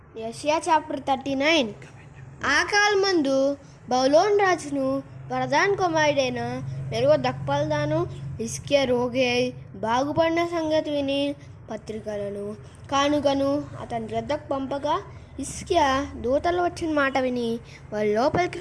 యెషయా చాప్టర్ 39. ఆ కాలమందు బబులోను రాజును ప్రధాన కుమారుడైన మెరోదక్బలదాను హిజ్కియా రోగి అయి బాగుపడిన సంగతి విని పత్రికలను కానుకను అతని వద్దకు పంపగా హిజ్కియా దూతలు వచ్చిన మాట విని వారి లోపలికి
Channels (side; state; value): both; identical; correlation 1.00